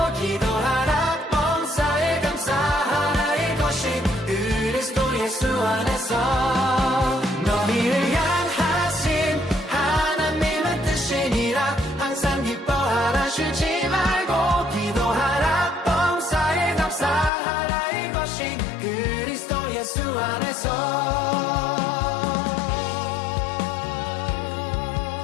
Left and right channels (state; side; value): drops out; right; at 17.3 s